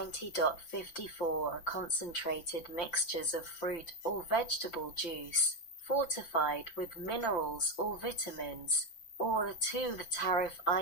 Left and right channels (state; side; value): late; right; 5.9 ms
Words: are concentrated mixtures of fruit or vegetable juice, fortified with minerals or vitamins, or 2. The tariff